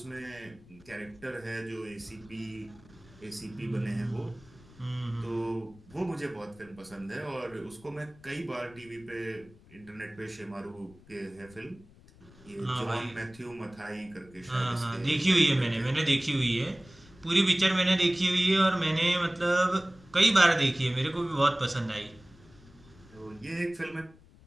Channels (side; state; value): left; noise; rumble, 24 dB below the sound